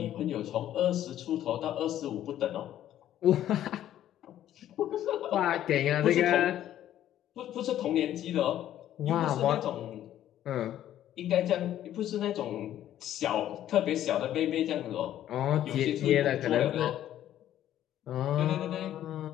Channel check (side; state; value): right; quieter; 12.0 dB